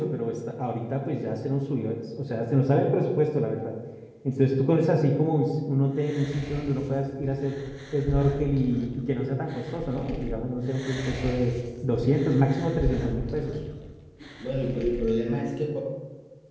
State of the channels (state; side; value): identical; both; correlation 1.00